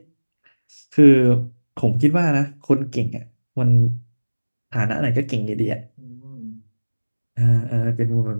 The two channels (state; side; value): inverted; both; correlation -1.00